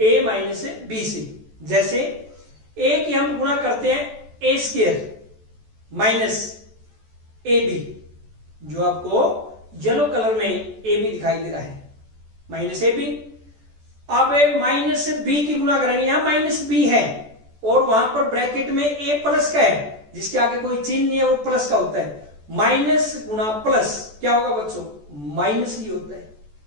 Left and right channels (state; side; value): late; left; 14 ms